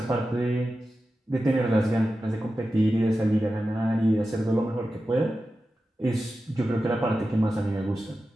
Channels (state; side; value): normal; both; correlation 0.92